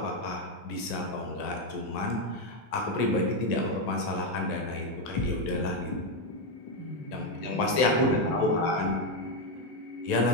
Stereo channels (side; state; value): right; late; 3.4 ms